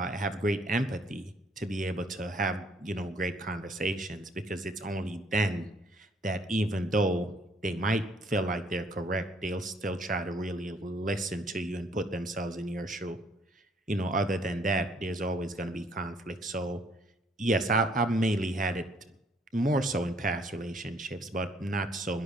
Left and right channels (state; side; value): normal; both; correlation 0.64